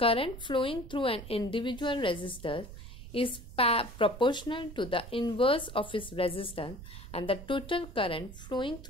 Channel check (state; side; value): noise; right; rumble, 13 dB below the sound